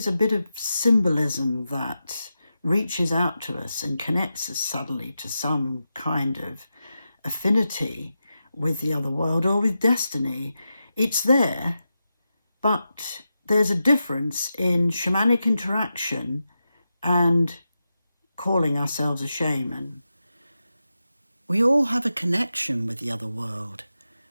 a bit of symbolism that reaches out to us and connects us suddenly to some kind of affinity with the other world or with destiny. It's there, but there's a difference in shamanic interaction and calling ourselves a shaman. We all have a connection with the other world,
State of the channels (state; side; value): inverted; both; correlation -0.90